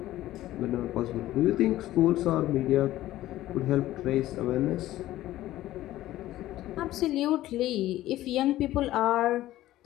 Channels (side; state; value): right; quieter; 14.9 dB